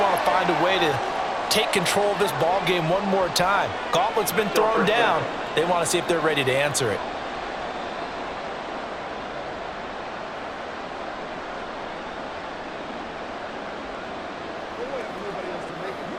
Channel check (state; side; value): identical; both; correlation 1.00